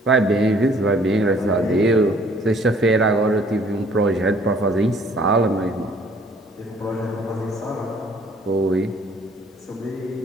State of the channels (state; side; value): normal; both; correlation 0.58